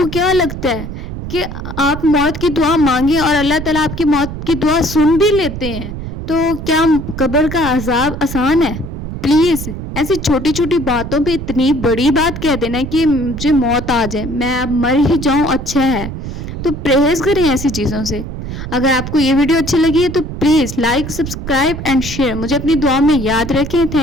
کیا لگتا ہے کہ آپ موت کی دعا مانگیں اور اللہ تعالیٰ آپ کی موت کی دعا سن بھی لیتے ہیں؟ تو کیا قبر کا عذاب آسان ہے؟ پلیز ایسی چھوٹی چھوٹی باتوں پہ اتنی بڑی بات کہہ دینا کہ مجھے موت آ جائے، میں اب مر ہی جاؤں، اچھا ہے۔ تو پرہیز کریں ایسی چیزوں سے۔ اگر آپ کو یہ ویڈیو اچھی لگی ہے تو please like, subscribe and share. مجھے اپنی دعا میں یاد رکھیں۔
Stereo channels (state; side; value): noise; right; rumble, 8 dB below the sound